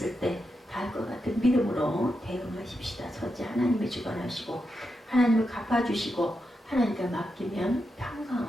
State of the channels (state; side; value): normal; both; correlation 0.86